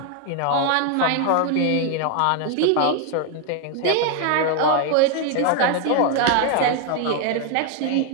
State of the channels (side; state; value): both; different; correlation 0.01